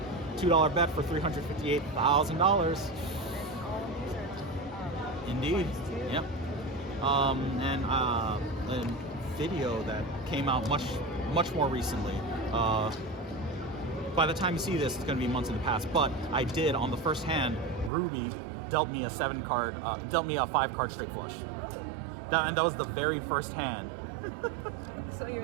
$2 bet for $358,000. Indeed. Yep. And a video that came out much more recently. By the time you see this, it's going to be months in the past. But I did on the first hand. Ruby dealt me a 5-card straight flush. And that was the very first hand. So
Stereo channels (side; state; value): left; drops out; at 17.9 s